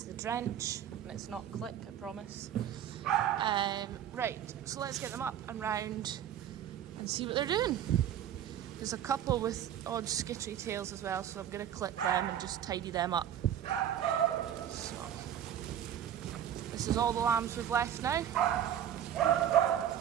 the drench, and it's not click, I promise. Right, so let's get them up and round and see what they're doing. There's a couple with odd skittery tails as well, so I'm going to clip them and just tidy them up. So this is all the lambs we've left now.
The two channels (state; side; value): quieter; left; 10.1 dB